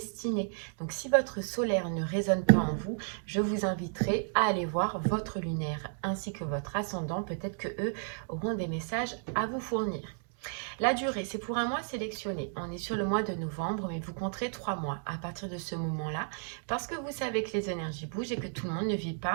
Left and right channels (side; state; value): left; silent; 56 dB below the other